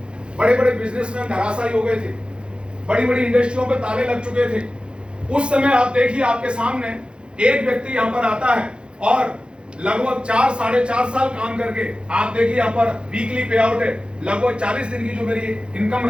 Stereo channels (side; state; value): left; late; 0.055 ms